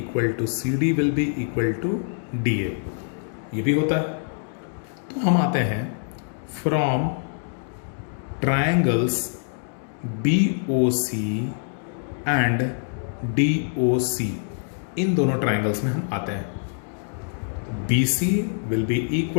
to CD will be equal to DA, ये भी होता है। तो हम आते हैं from triangles BOC and DOC, इन दोनों ट्रायंगल्स में हम आते हैं। BC will be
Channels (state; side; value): silent; right; digital silence